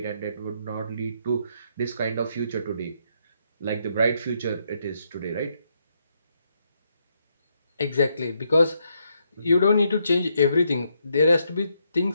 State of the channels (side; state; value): both; inverted; correlation -0.77